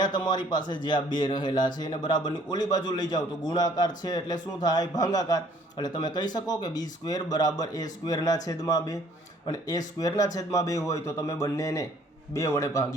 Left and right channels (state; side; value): normal; both; correlation 0.59